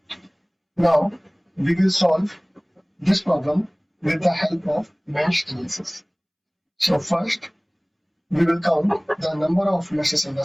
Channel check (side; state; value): both; identical; correlation 1.00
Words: Now we will solve this problem with the help of mesh analysis. So first we will count the number of meshes in the